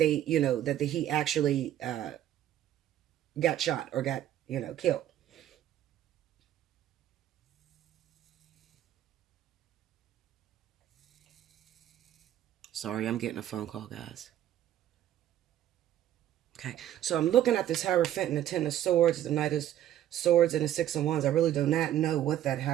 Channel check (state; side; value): quieter; left; 11.9 dB